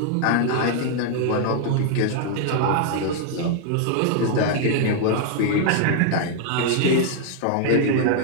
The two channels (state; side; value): different; both; correlation 0.00